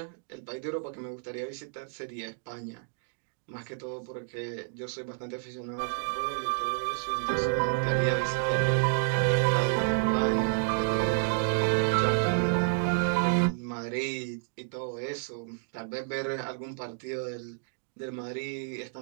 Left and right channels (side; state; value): left; silent; digital silence